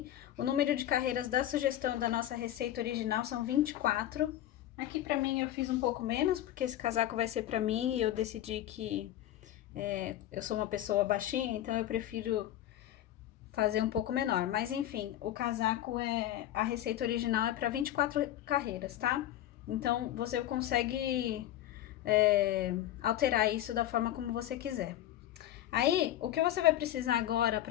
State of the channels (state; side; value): quieter; right; 12.8 dB